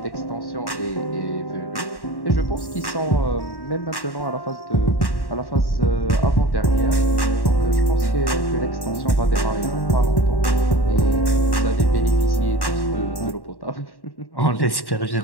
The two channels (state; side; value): late; right; 1.1 ms